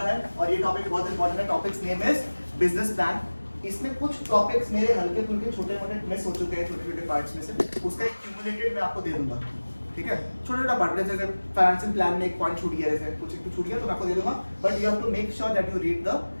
और ये टॉपिक बहुत इंपॉर्टेंट है। Topics name is business plan. इसमें कुछ टॉपिक्स मेरे हल्के फुल्के छोटे मोटे मिस हो चुके हैं, छोटे छोटे पार्ट्स में से, उसका एक क्यूमुलेटेड मैं आपको दे दूंगा, ठीक है। छोटा छोटा पार्ट, जैसे फाइनेंशियल प्लान में एक पॉइंट छूट गया, जैसे कुछ छूट गया तो मैं आपको दे दूंगा, but you have to make sure that you read the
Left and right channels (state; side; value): inverted; both; correlation -1.00